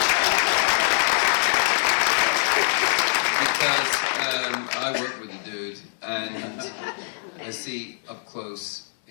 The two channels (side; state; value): right; silent; digital silence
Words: Because I work with the dude, and I see up close